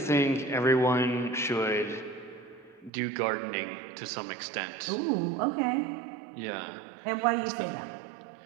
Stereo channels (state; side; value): drops out; left; at 2.9 s